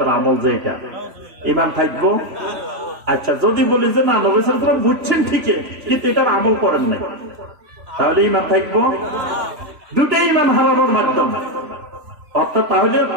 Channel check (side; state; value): left; late; 3.4 ms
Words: আমল যে এটা, ঈমান থাকবো? আচ্ছা, যদি বলি যে না, নবী সাল্লাল্লাহু আলাইহি ওয়াসাল্লাম বুঝছেন ঠিকই কিন্তু এটার আমল করেন নাই, তাহলে ঈমান থাকবো? দুটাই ঈমান হারানোর মাধ্যম। অর্থাৎ তাহলে